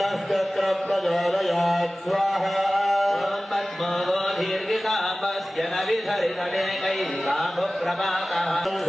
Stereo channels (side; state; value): both; normal; correlation 0.97